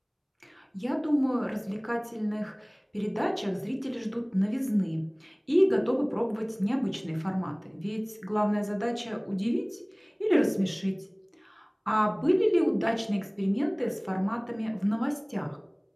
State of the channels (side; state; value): both; identical; correlation 1.00